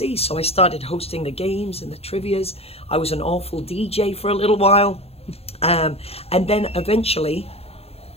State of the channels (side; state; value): right; late; 0.29 ms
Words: So I started hosting the games and the trivias. I was an awful DJ for a little while. And then eventually